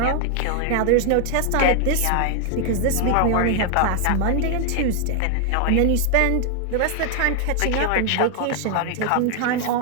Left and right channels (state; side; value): different; both; correlation 0.00